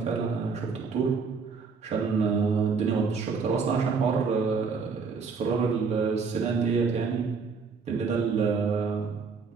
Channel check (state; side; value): quieter; left; 5.1 dB